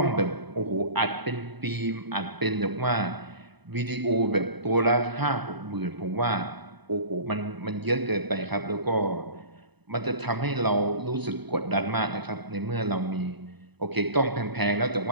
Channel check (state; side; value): late; left; 0.99 ms